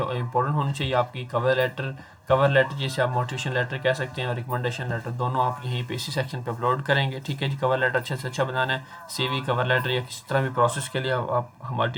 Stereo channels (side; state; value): both; identical; correlation 1.00